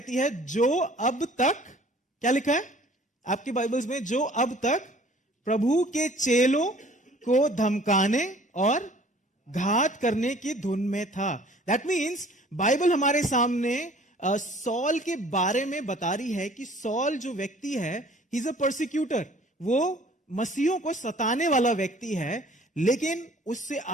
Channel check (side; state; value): both; normal; correlation 0.53